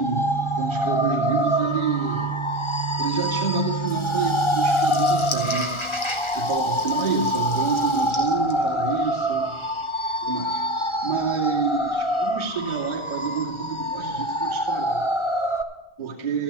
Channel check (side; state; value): right; late; 1.4 ms